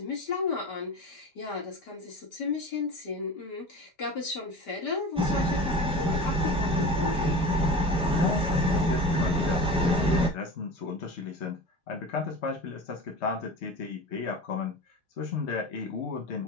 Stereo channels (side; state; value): both; normal; correlation 0.32